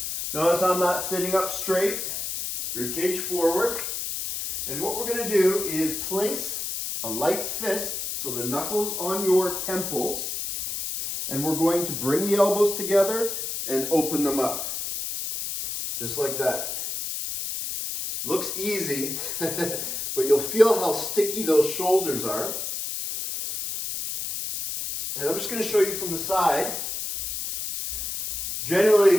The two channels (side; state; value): left; noise; hiss, 4 dB below the sound